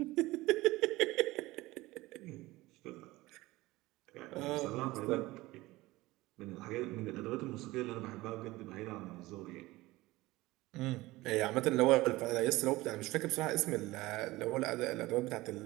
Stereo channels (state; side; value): quieter; left; 19.4 dB